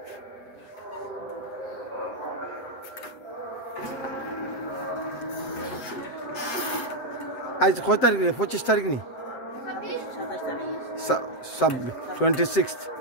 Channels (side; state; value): right; late; 7.7 ms